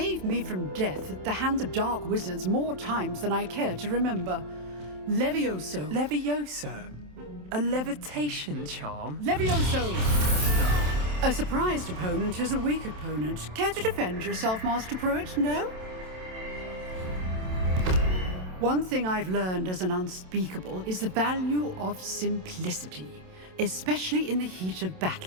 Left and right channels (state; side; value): late; left; 27 ms